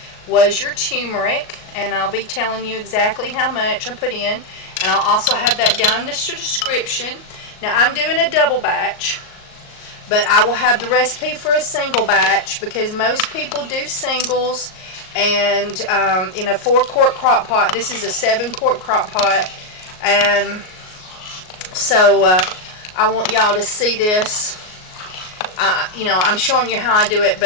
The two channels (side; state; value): right; late; 38 ms